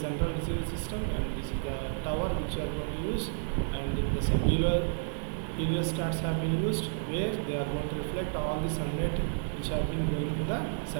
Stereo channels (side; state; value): left; silent; digital silence